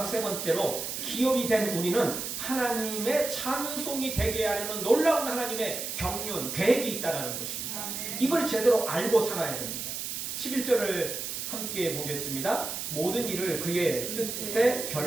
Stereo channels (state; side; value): noise; right; hiss, 5 dB below the sound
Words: 세 번째로 기업이 된 우리는 하나님의 찬송이 되게 하려는 놀라운 하나님의 경륜, 계획이 있다는 것입니다. 이걸 제대로 알고 살아야 됩니다. 11절을 함께 보겠습니다. 모든 일을 그의 뜻의